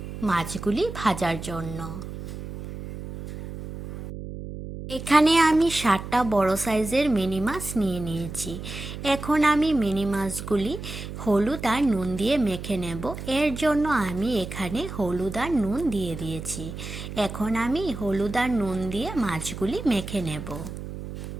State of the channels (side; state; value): right; noise; hum, 9 dB below the sound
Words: মাছগুলি ভাজার জন্য। এখানে আমি 7টা বড় সাইজের মিনি মাছ নিয়ে নিয়েছি। এখন আমি মিনি মাছগুলি হলুদ আর নুন দিয়ে মেখে নেব। এর জন্য আমি এখানে হলুদ আর নুন দিয়ে দিয়েছি। এখন আমি হলুদ আর নুন দিয়ে মাছগুলি মেখে নেব।